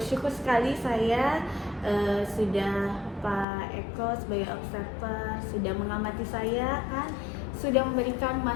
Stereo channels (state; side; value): drops out; right; at 3.5 s